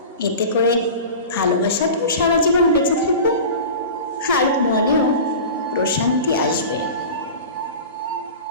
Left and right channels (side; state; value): both; inverted; correlation -0.34